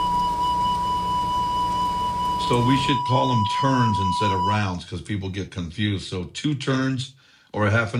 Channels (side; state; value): both; identical; correlation 1.00